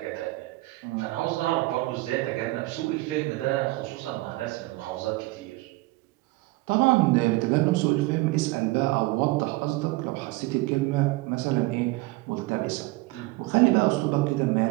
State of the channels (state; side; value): quieter; left; 21.3 dB